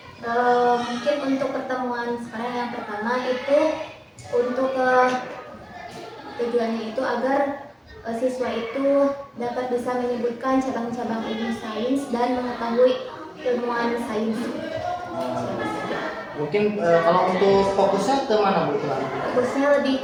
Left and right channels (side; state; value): both; identical; correlation 1.00